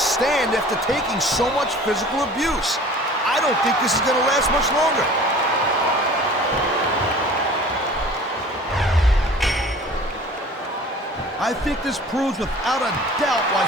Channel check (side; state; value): both; normal; correlation 0.45